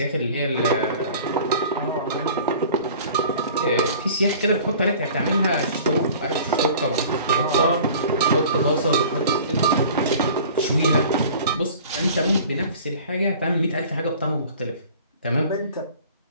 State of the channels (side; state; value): both; inverted; correlation -0.46